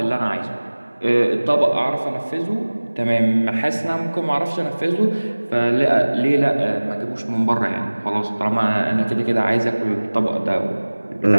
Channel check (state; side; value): inverted; both; correlation -1.00